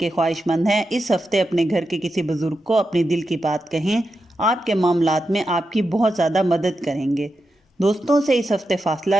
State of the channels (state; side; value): normal; both; correlation 0.88